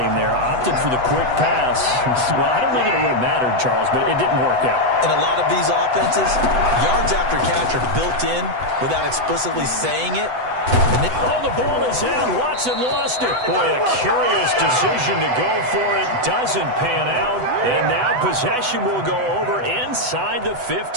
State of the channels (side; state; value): left; late; 8.0 ms